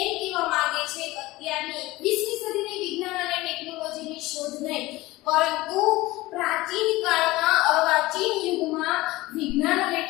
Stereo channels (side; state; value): right; quieter; 19.2 dB